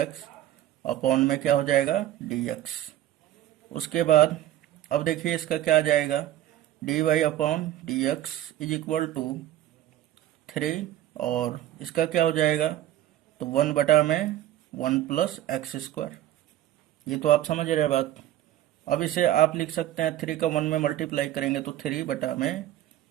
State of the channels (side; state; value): left; quieter; 13.1 dB